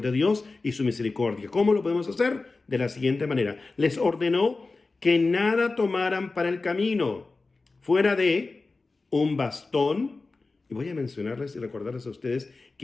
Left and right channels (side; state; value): right; quieter; 3.7 dB